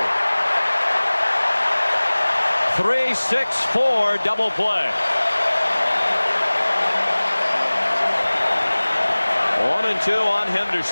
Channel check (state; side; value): inverted; both; correlation -1.00